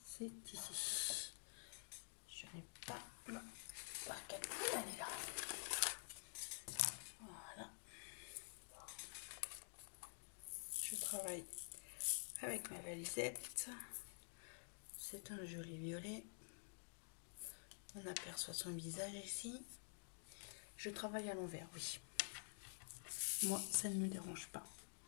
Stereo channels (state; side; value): silent; right; digital silence